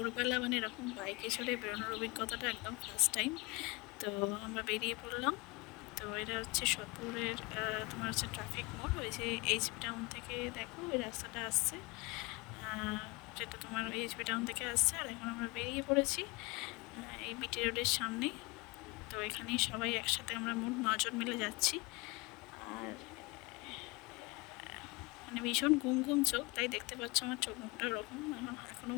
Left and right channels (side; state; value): right; quieter; 25.7 dB